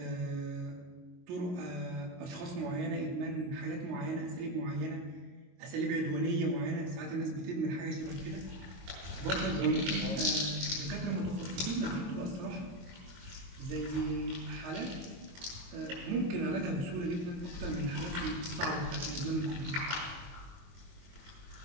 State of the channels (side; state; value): left; late; 22 ms